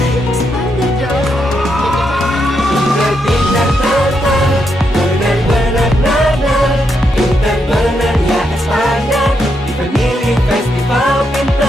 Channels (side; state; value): both; normal; correlation 0.81